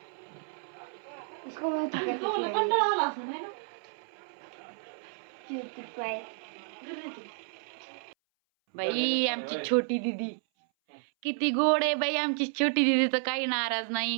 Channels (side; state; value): left; silent; 57 dB below the other